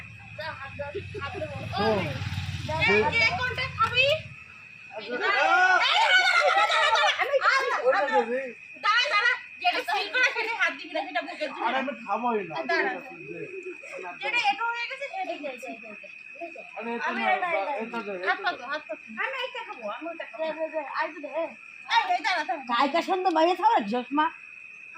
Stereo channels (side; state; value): both; identical; correlation 1.00